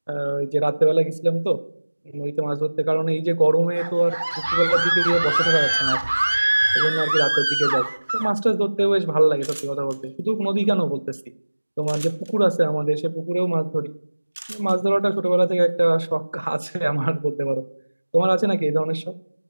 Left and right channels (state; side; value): inverted; both; correlation -1.00